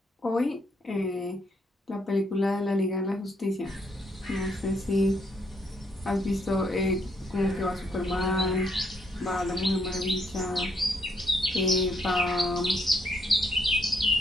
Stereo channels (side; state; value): both; normal; correlation 0.72